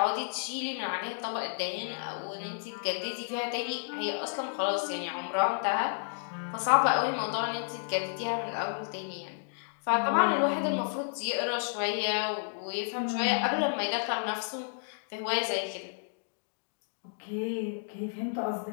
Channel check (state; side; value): silent; right; digital silence